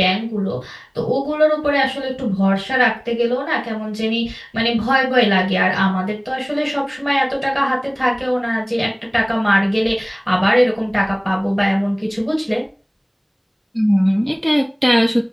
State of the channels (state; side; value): identical; both; correlation 1.00